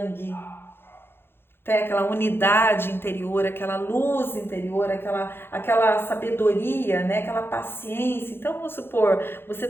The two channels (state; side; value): late; right; 0.11 ms